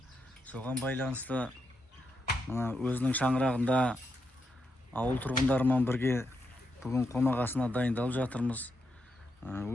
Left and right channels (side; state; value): both; normal; correlation 0.83